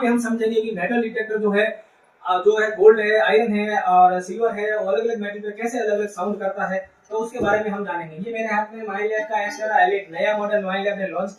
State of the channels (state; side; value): identical; both; correlation 1.00